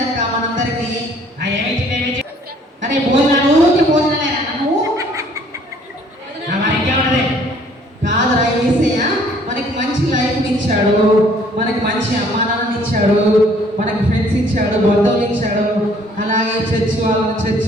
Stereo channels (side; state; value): both; normal; correlation 0.59